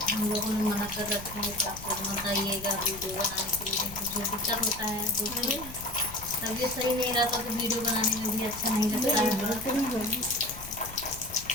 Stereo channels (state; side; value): noise; left; rumble, 15 dB below the sound